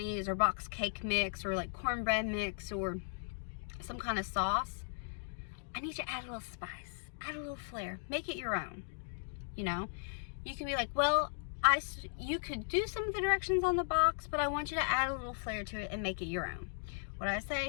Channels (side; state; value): right; silent; digital silence